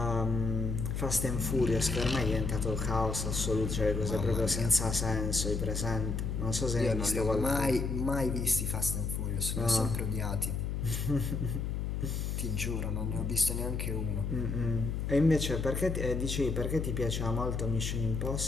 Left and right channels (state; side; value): noise; left; hum, 2 dB below the sound